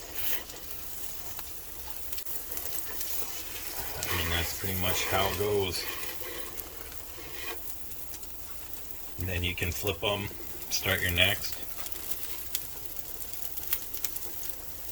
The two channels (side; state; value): both; identical; correlation 1.00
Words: I mean, that's pretty much how it goes. And then you can flip them, start your next.